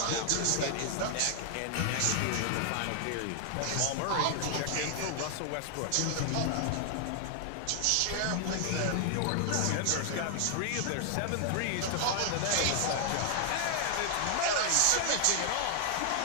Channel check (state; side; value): different; both; correlation 0.00